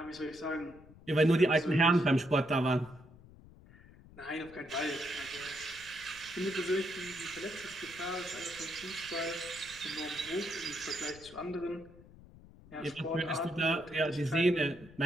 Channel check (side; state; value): left; noise; rumble, 21 dB below the sound